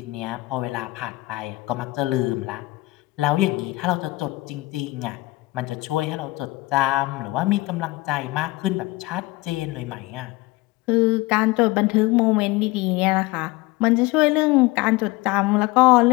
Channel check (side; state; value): right; quieter; 21.1 dB